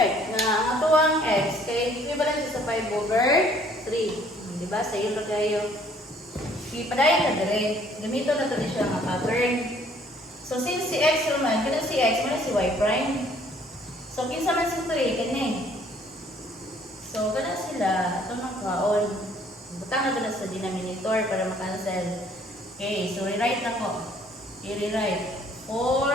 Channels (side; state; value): both; normal; correlation 0.60